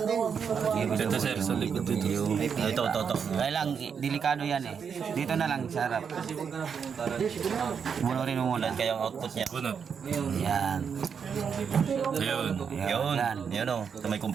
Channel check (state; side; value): quieter; left; 6.7 dB